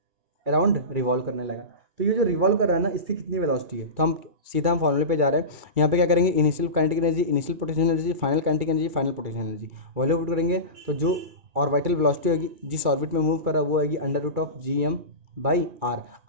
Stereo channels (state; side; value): late; left; 2.3 ms